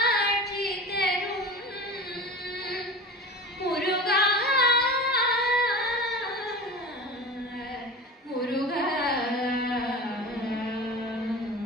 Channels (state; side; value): normal; both; correlation 0.33